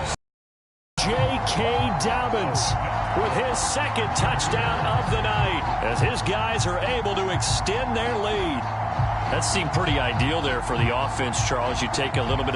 J.K. Dobbins with his 2nd touchdown of the night as his guys are able to extend their lead. That seemed pretty ideal there for the offense, Charles. You take a little bit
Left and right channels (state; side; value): identical; both; correlation 1.00